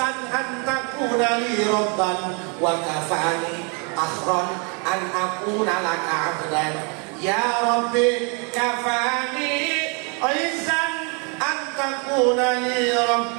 an takuna li rabban wa kafani akhron an akuna laka abdan. Ya Rabbi kafani izzan an takuna li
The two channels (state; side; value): quieter; left; 35.7 dB